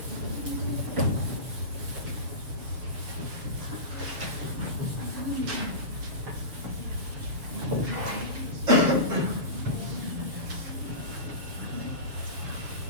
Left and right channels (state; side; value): late; left; 6.8 ms